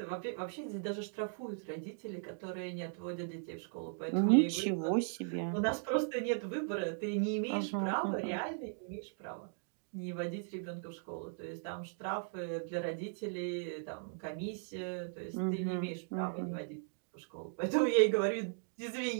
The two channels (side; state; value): left; silent; digital silence